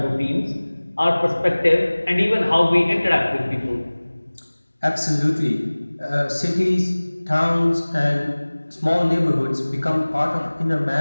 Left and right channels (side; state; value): both; inverted; correlation -1.00